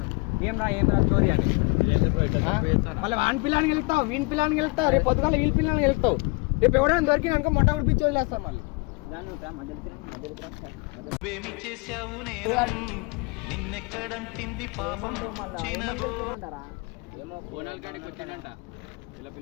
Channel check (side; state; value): right; quieter; 28.1 dB